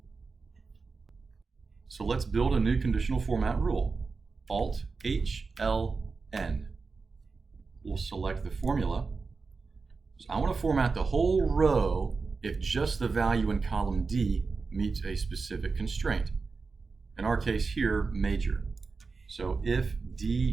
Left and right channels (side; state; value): left; quieter; 4.4 dB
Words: So let's build a new conditional format rule. Alt-H-L-N. We'll select the formula. So I want to format the whole row if just the value in column D meets a specific constraint. In our case here, major. So if